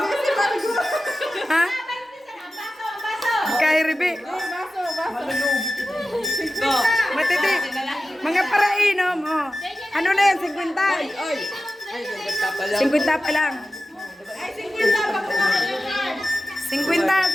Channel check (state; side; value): normal; both; correlation 0.94